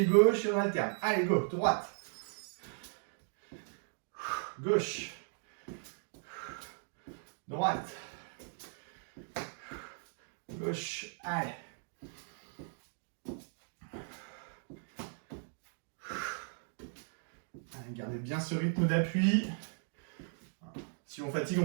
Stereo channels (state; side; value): silent; left; digital silence